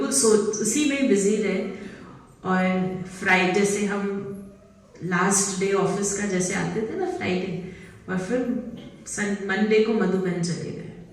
उसी में बिजी रहे। और फ्राइडे से हम लास्ट डे ऑफिस का जैसे आते थे ना फ्राइडे, और फिर मंडे को मधुबन चले गए।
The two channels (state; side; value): identical; both; correlation 1.00